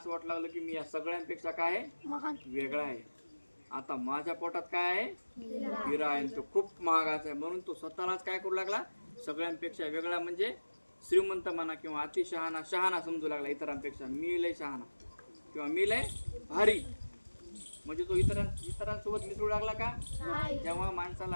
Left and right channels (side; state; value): both; inverted; correlation -1.00